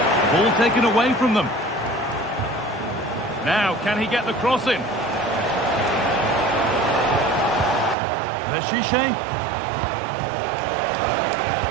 Ball taken away from them. Now, can he get the cross in? Veshiche.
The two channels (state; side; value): drops out; left; at 8.0 s